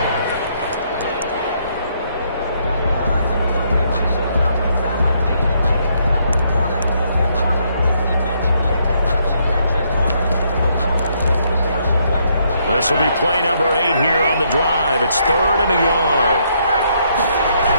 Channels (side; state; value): both; inverted; correlation -0.73